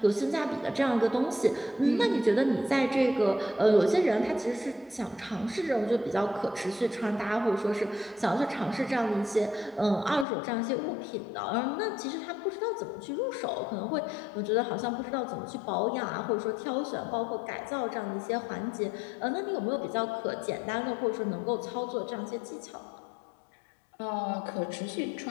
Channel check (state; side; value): drops out; right; at 10.2 s